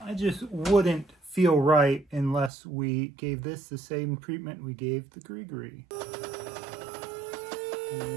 just wouldn't feel right unless we gave this the same treatment we gave the grigri.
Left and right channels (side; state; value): left; drops out; at 2.5 s